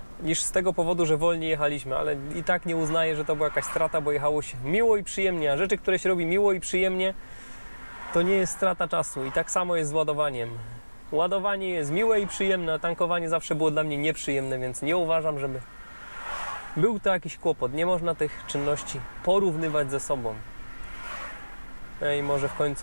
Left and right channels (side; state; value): both; inverted; correlation -1.00